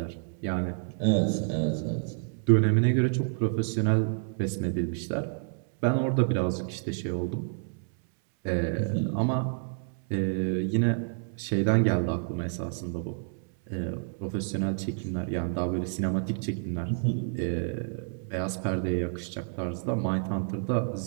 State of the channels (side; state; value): left; silent; 59 dB below the other